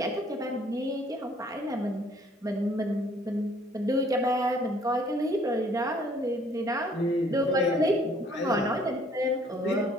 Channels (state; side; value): normal; both; correlation 0.60